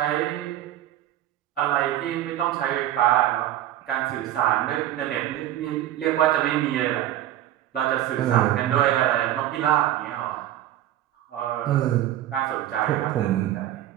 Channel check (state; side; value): quieter; left; 12.9 dB